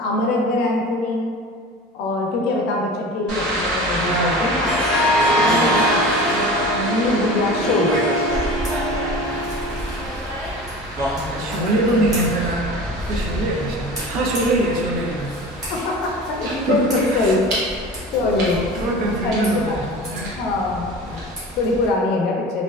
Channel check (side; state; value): both; normal; correlation 0.36